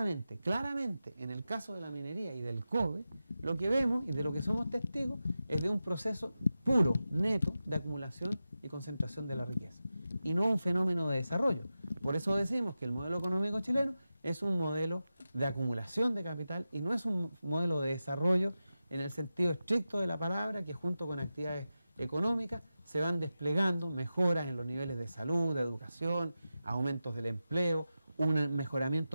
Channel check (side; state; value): both; inverted; correlation -0.92